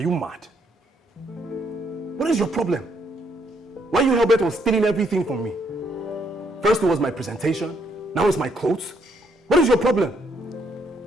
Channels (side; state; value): both; normal; correlation 0.72